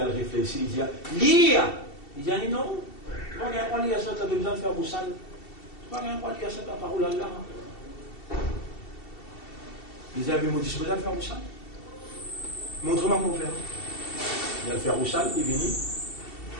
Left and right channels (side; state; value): right; late; 2.7 ms